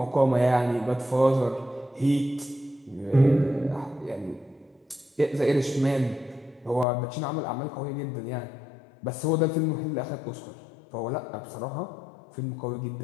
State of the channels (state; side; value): drops out; right; at 6.9 s